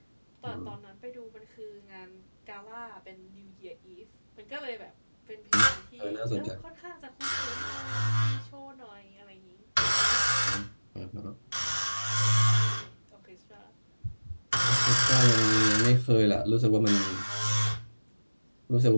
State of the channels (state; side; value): inverted; both; correlation -1.00